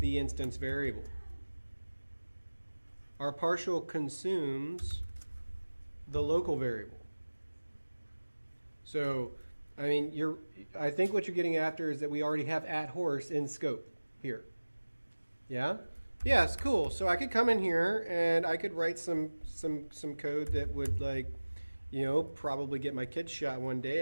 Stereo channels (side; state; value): both; inverted; correlation -1.00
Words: instance variable. Our partial consumes the local variable. So, I mean, I think what you're getting after is that we already have at horse in scope here. Yeah? Yes, cool. So I could come in here and I could write some code that would, like, you know, probably get my kid shot one